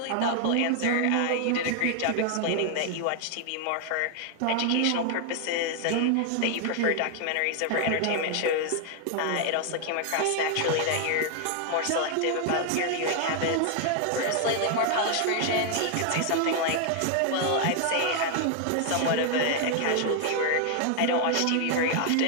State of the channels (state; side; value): different; both; correlation 0.00